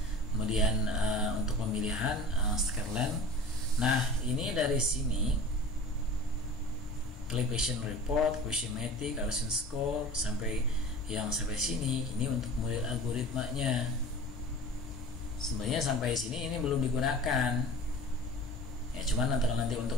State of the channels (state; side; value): normal; both; correlation 0.39